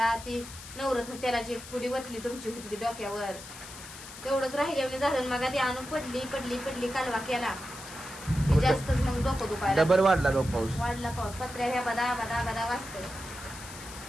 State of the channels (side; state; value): left; noise; hiss, 14 dB below the sound